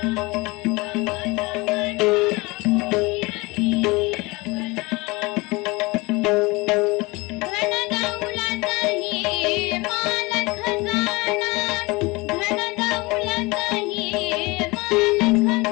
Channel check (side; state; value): right; quieter; 24.1 dB